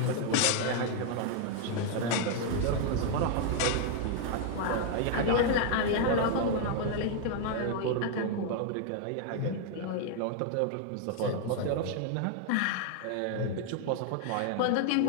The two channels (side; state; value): both; different; correlation 0.00